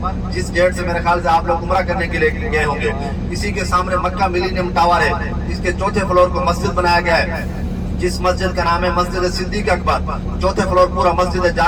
جس گیٹ سے میرے خیال سے آپ لوگ عمرہ کرنے کے لیے گئے ہوں گے، اسی کے سامنے مکہ ملینیم ٹاور ہے، اس کے چوتھے فلور کو مسجد بنایا گیا ہے، جس مسجد کا نام ہے مسجد صدیق اکبر۔ چوتھے فلور پورا مسجد ہے، جا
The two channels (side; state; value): both; identical; correlation 1.00